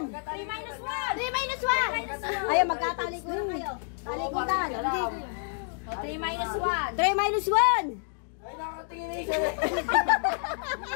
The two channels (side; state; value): right; silent; digital silence